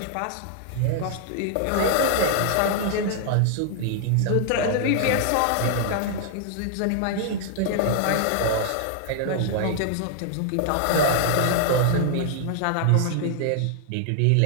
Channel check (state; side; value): different; both; correlation -0.01